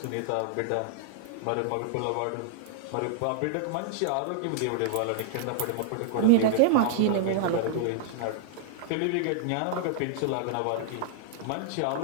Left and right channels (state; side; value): different; both; correlation -0.01